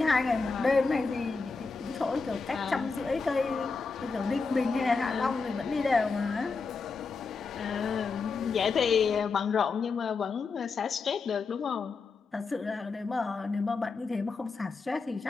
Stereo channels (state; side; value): quieter; right; 4.5 dB